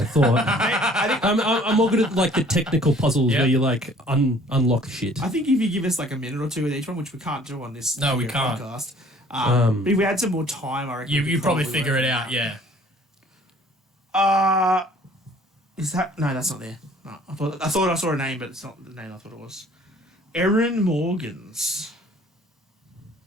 I thought. I think I'm more good at like the technical puzzles Yeah. where you like unlock shit. I think if you give us like a minute or two with each one, which we can't do on this No, we video can't. podcast, but if we had some more time, I reckon we You could probably figure work it out, yeah. Is that no? That's not there. No, I thought I saw a name, but it's not the name I thought it was. Erin Morgans.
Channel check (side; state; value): both; normal; correlation 0.54